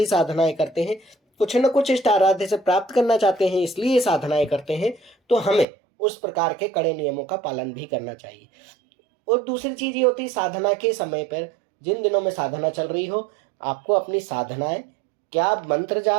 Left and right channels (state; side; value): drops out; left; at 5.7 s